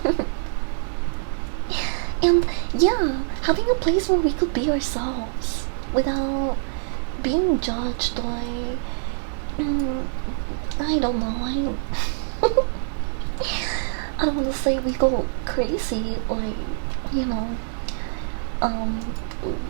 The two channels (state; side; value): silent; left; digital silence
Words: And yeah, having a place where we could be ourselves without being judged or I don't know. I don't want to say we go crazy or you know um